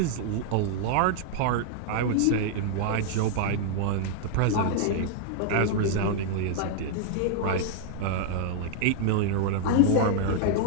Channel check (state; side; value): different; both; correlation 0.00